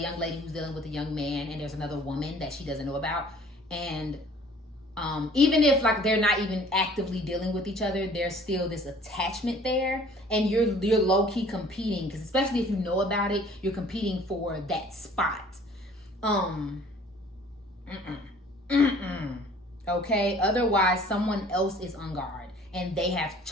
lady who's dealing with a young man and there's another woman that she doesn't know about. And even if like they're not even actively dealing with each other, there's still this attachment there, and you're low-key competing, because especially if you know about it, you're competing for that spot. Okay, otherwise someone else is on guard and they have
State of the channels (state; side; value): normal; both; correlation 0.53